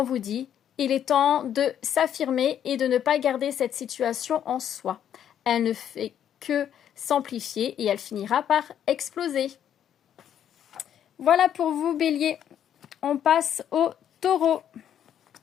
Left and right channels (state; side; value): quieter; right; 9.7 dB